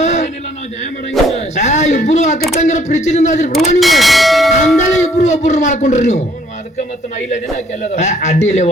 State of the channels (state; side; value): normal; both; correlation 0.62